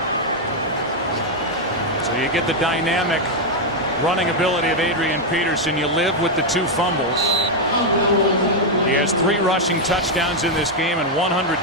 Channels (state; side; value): normal; both; correlation 0.01